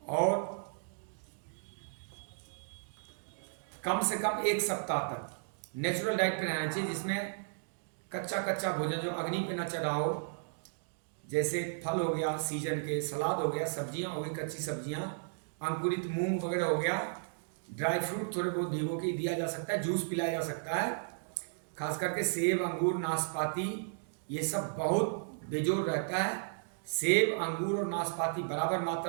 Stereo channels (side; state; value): left; silent; digital silence